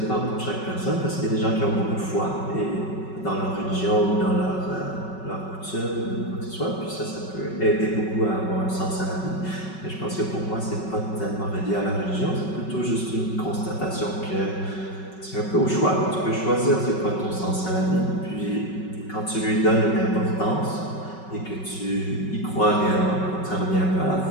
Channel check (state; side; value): late; right; 5.3 ms